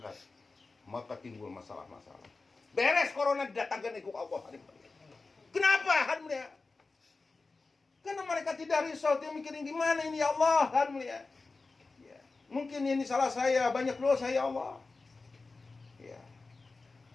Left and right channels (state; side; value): quieter; right; 3.8 dB